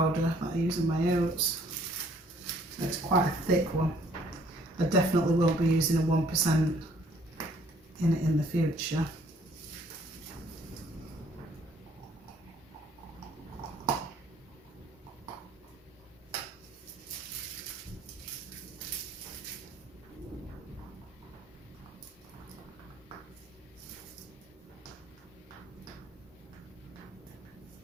that I use in my oats. So it's quite a thick one. I definitely won't be using a 1% in it in the future.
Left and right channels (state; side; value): normal; both; correlation 0.61